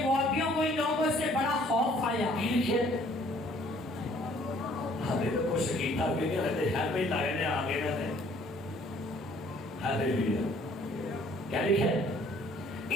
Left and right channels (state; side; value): normal; both; correlation 0.59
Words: موابیوں کو ان لوگوں سے بڑا خوف آیا. ہمیں تو کچھ شکیتا بھی نہیں رہتے، خیمے لائے نے آگے نہ دیں. ہاللویا. کیا لکھا ہے؟